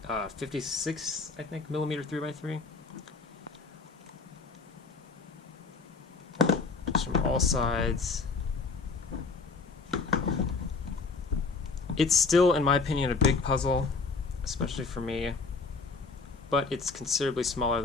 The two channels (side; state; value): right; quieter; 4.3 dB